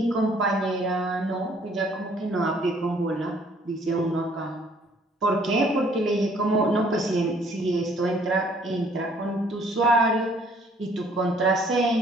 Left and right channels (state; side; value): normal; both; correlation 0.61